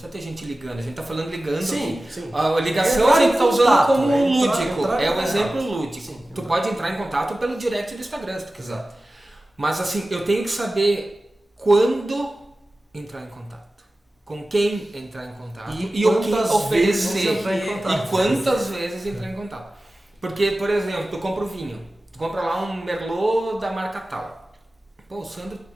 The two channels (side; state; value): both; normal; correlation 0.96